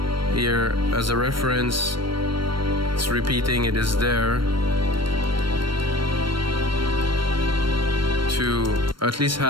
here as a reference. It's repeating, it is there. To at least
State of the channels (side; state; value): left; late; 0.73 ms